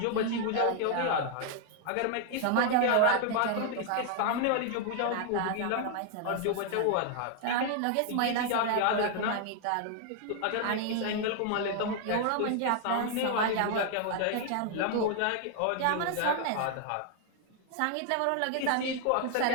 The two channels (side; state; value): both; different; correlation 0.00